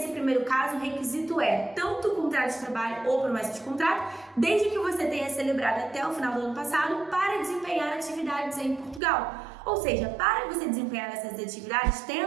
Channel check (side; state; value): left; drops out; at 9.0 s